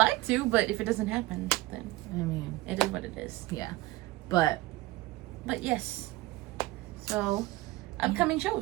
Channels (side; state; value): left; quieter; 19.4 dB